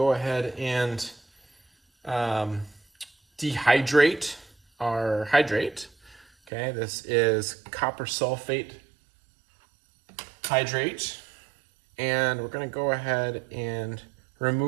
ahead and dehydrate our hydrate. Okay, this is copper sulfate hydrate. And we're going to go ahead and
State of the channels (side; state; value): left; drops out; at 6.5 s